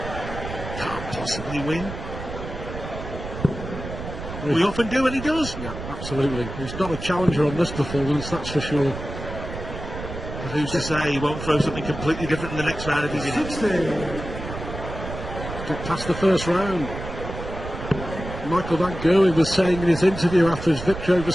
can't possibly win? We often do, and he does. Yeah, absolutely. He's not a challenger on this performance, that's for sure. But who's to say he won't throw something completely different in the next round if he's in it? 60. Get past the first round. Michael Van Gerwen was saying in his interview after his victory over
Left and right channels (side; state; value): right; noise; rumble, 9 dB below the sound